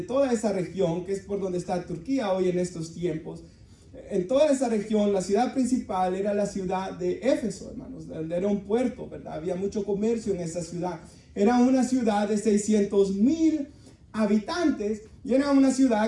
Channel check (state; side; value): identical; both; correlation 1.00